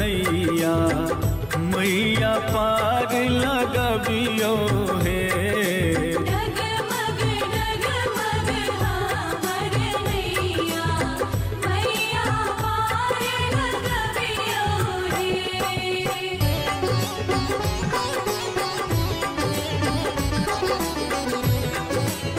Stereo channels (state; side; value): identical; both; correlation 1.00